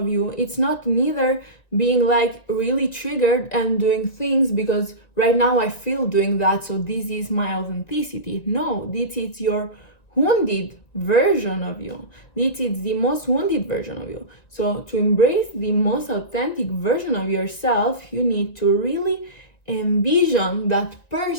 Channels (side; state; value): right; late; 1.9 ms